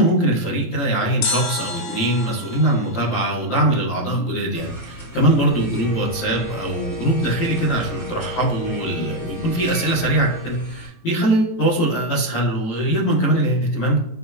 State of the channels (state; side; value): late; right; 18 ms